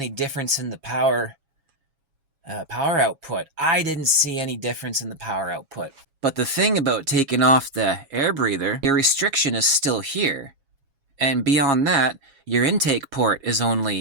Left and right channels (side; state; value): left; late; 7.3 ms